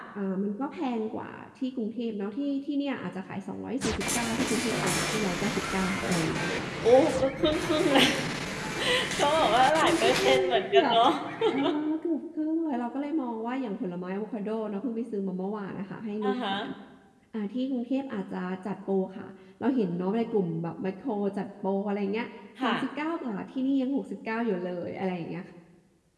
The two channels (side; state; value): both; identical; correlation 1.00